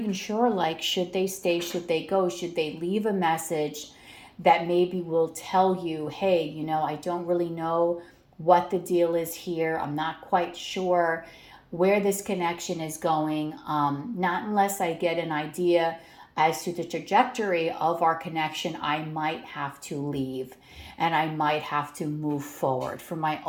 sure, like, should they stay, should they go, should they leave a message that maybe will tell you, hey, you know, I don't really know what the deal is here. I'm not quite sure where this connection is going. Not unless I get an idea as to the trajectory of our connection, I might have to leave and I might have to move forward for my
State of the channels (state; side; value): identical; both; correlation 1.00